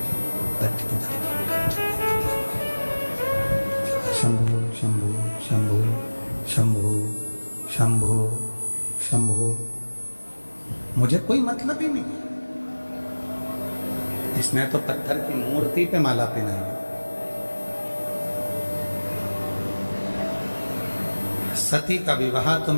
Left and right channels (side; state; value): both; inverted; correlation -1.00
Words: शंभो शंभो शंभो शंभो शंभो शंभो। मुझे कोई मतलब ही नहीं, इसने तो पत्थर की मूर्ति पे माला पहनाई। सती का विवाह तो